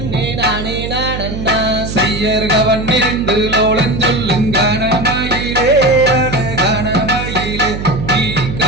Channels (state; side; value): noise; right; hum, 7 dB below the sound